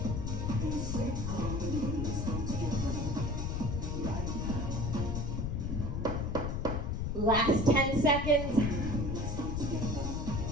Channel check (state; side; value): noise; left; rumble, 1 dB below the sound